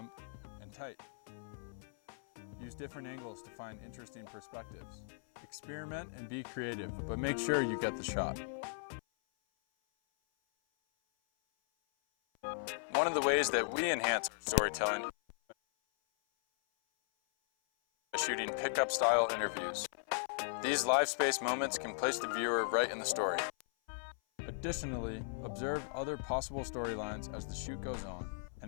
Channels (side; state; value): right; silent; 53 dB below the other